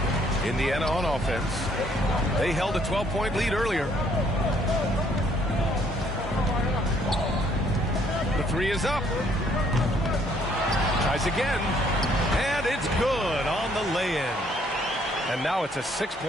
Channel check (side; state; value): both; normal; correlation 0.65